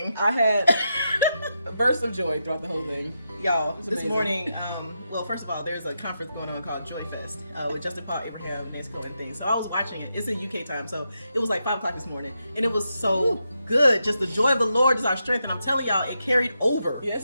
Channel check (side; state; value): both; inverted; correlation -0.84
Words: I had a burst of joy throughout the whole thing. Y'all, this amazing. morning, well, first of all, there's a conference going on called Joy Fest with Justin Paul, Abraham, Nesco, and things. So I was watching it. It's in UK time, so it was like 5 o'clock this morning. And it was so good. Just the joy of the Lord is our strength. And I'm telling y'all, it carried over.